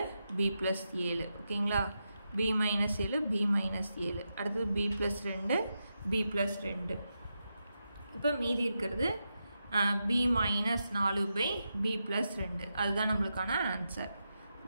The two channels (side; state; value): both; inverted; correlation -0.87